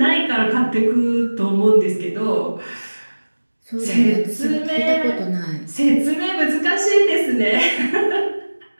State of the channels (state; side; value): inverted; both; correlation -1.00